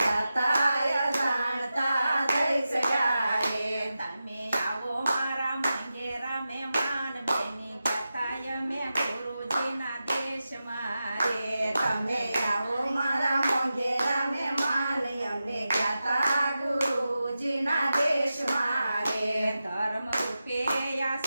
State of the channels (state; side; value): inverted; both; correlation -0.92